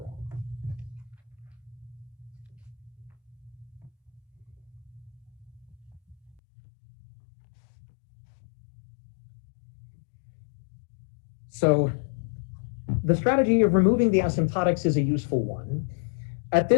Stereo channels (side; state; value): right; drops out; at 6.3 s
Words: So the strategy of removing the asymptotics is a useful one. At